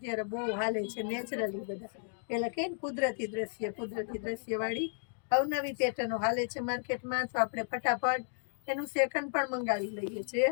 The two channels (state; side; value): silent; right; 55 dB below the other